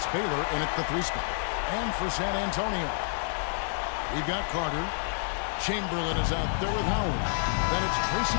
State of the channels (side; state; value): right; silent; digital silence